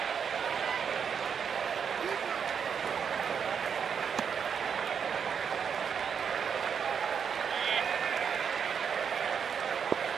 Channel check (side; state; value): left; quieter; 7.0 dB